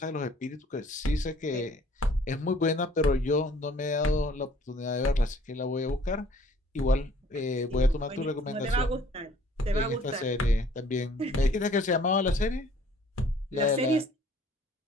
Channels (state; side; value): normal; both; correlation 0.56